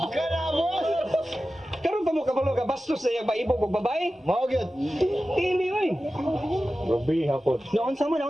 Kana, boss! Karon pa mo kabalo ka ba? bastos na yung maibog og babae. Mao gyud. Dili oy. Grabe hapon. Naon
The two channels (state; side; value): normal; both; correlation 0.94